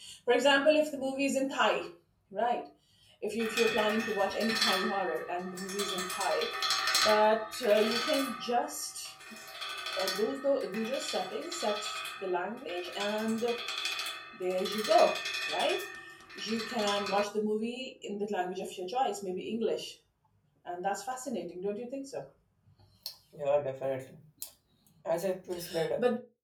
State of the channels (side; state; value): both; identical; correlation 1.00